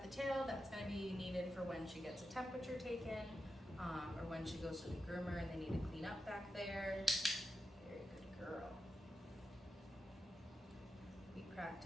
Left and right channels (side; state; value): both; normal; correlation 0.89